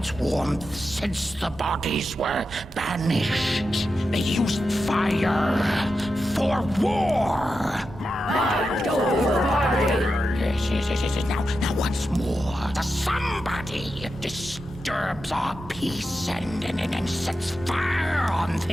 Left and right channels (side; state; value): both; normal; correlation 0.89